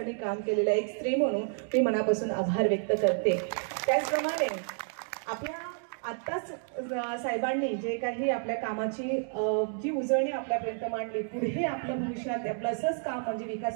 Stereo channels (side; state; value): left; silent; 58 dB below the other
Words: काम केलेलं आहे, एक स्त्री म्हणून मी मनापासून आभार व्यक्त करते. त्याचप्रमाणे आपल्या आत्ताच साहेबांनी जे काही आपल्या कामाची जी उजळणी आपल्यापर्यंत मांडली, पुढे आपल्या भविष्यात आपलं असंच काम म्हणजे